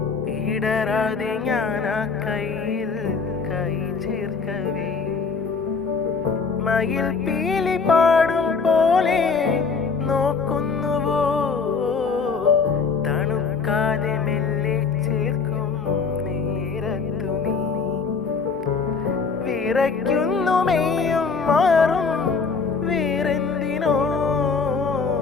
ഇടരാതെ ഞാൻ ആ കയ്യിൽ കൈ ചേർക്കവേ മയിൽ പീലി പാടും പോലെ നോക്കുന്നുവോ, തണുക്കാതെ മെല്ലെ ചേർക്കും നേരത്തു നീ വിറയ്ക്കുന്നു മെയ്യും മാറും വേറെന്തിനോ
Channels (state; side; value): quieter; right; 5.0 dB